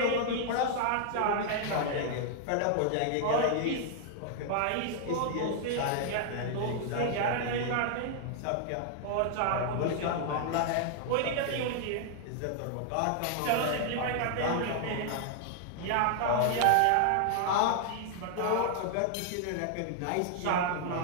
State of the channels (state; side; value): different; both; correlation 0.00